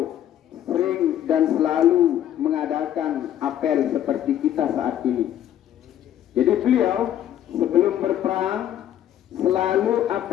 sering dan selalu mengadakan apel seperti kita saat ini. Jadi beliau sebelum berperang selalu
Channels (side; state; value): right; quieter; 11.1 dB